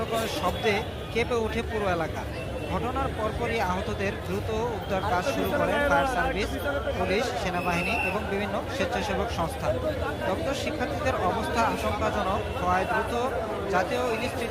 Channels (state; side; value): identical; both; correlation 1.00